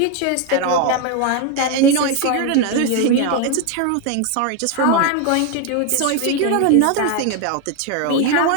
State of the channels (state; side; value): different; both; correlation 0.01